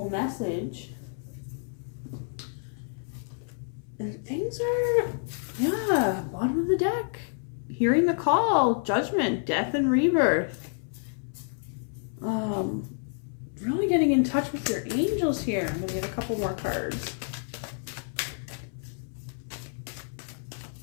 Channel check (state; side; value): silent; right; 59 dB below the other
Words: message. And things are, bottom of the deck. Hearing the call, judgment, death and rebirth. Really getting in touch with your angels here. I'm going to get a couple more cards.